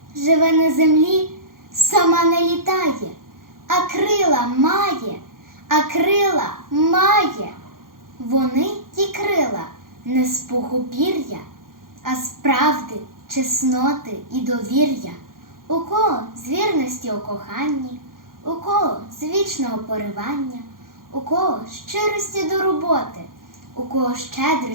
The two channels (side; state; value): left; late; 0.91 ms